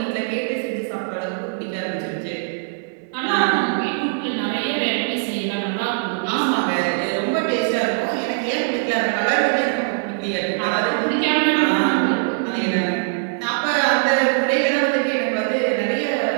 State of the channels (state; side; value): silent; left; 65 dB below the other